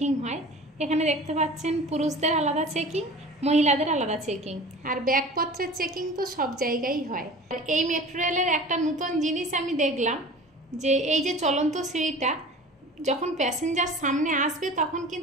हय। एखाने देखते पाच्छेन पुरुषदेर आलादा चेकिंग, महिलादेर आलादा चेकिंग और बैगपत्रेर चेकिंग तो सब जायगाय हय। और এই मेट्रो रेलेर एकटा नतून जिनिस आमि देखलाम जे এই যে চলন্ত সিঁড়িটা যখন প্যাসেঞ্জার সামনে আসবে তখন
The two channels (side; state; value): both; normal; correlation 0.39